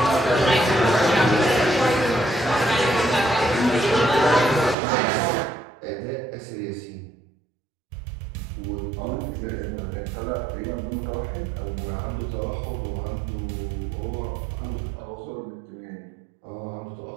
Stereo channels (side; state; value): left; drops out; at 4.8 s